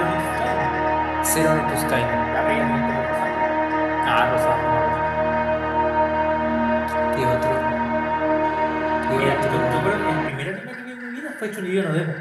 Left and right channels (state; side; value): identical; both; correlation 1.00